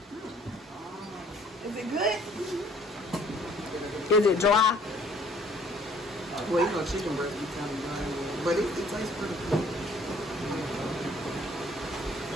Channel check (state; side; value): normal; both; correlation 0.58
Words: Is it good? Is it dry? Well, you know, chicken breast be kind of dry, but it tastes pretty good.